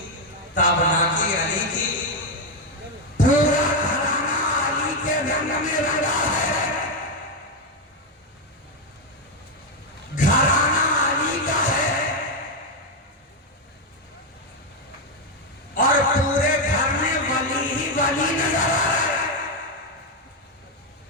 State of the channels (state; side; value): normal; both; correlation 0.06